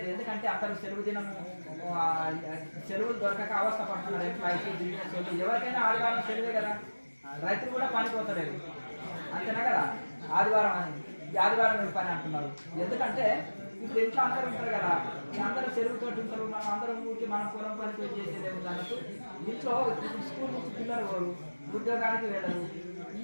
ఎందుకంటే అందరూ సెలవు దినం సెలవులు దొరకక అవస్థ పడుతున్నారు. ఎంప్లాయీస్, బిజినెస్ ఎవరికైనా ఆదివారం సెలవే కదా. రైతులు కూడా పనిపోతలేదు అంతేనా కదా. ఆదివారం పని అంటున్నారు. ఎందుకంటే ఇప్పుడు ఇంట్లో అందరూ ఉంటారు కదా, అందరూ సెలవుతో ఉంటారు. మనం అందరం ఊరికి మనం పొలం పనితో చేసేది ఏముంది అన్నట్టు ఇంట్లో స్కూల్ నుంచి పిల్లలు పోరు, ఉద్యోగానికి వెళ్ళరు,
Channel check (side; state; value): both; inverted; correlation -1.00